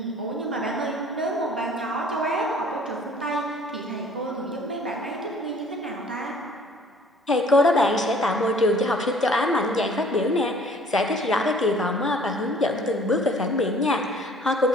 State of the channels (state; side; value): normal; both; correlation 0.54